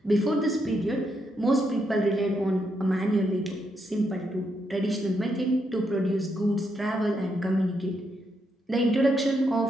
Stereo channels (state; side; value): normal; both; correlation 0.79